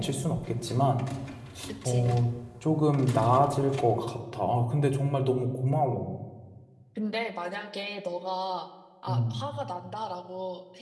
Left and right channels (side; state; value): both; identical; correlation 1.00